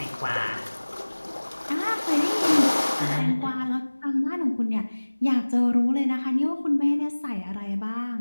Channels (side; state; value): both; inverted; correlation -1.00